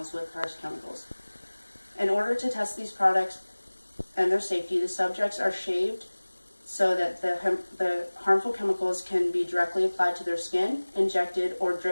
with harsh chemicals. In order to test these products and their safety, the subjects are shaved so that the harmful chemicals can be directly applied to their skin, injected, or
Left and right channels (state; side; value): inverted; both; correlation -1.00